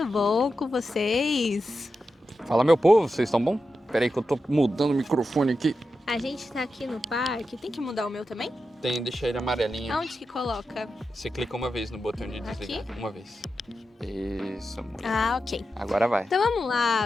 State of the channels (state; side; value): normal; both; correlation 0.90